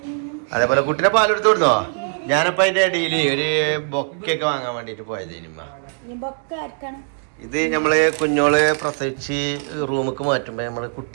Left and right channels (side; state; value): left; silent; digital silence